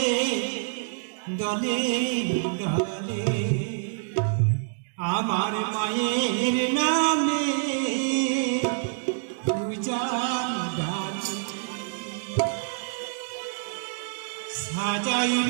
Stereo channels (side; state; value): left; silent; digital silence